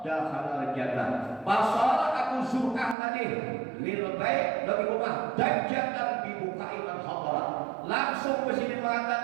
dakhala jannah. Pasal Abu Zur'ah tadi lil bait dari rumah dajjal dibuka iman hadara. Langsung ke sini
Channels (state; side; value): drops out; left; at 3.0 s